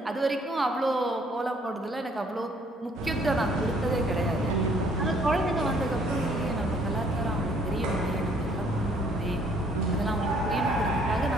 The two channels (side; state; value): both; normal; correlation 0.62